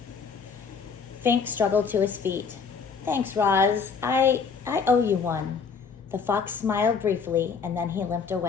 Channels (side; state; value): right; quieter; 5.7 dB